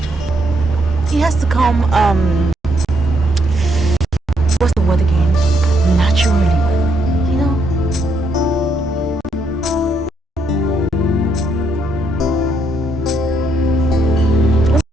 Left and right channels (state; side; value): normal; both; correlation 0.75